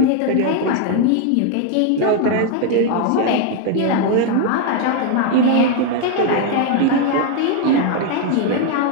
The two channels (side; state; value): both; different; correlation 0.01